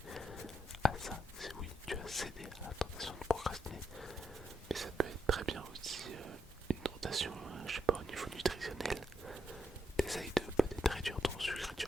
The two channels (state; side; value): normal; both; correlation 0.81